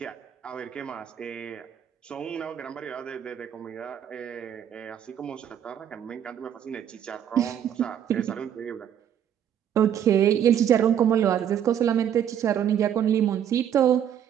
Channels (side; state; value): left; quieter; 9.5 dB